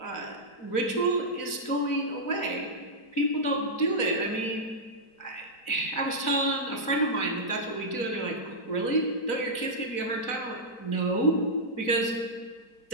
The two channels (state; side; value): late; right; 4.5 ms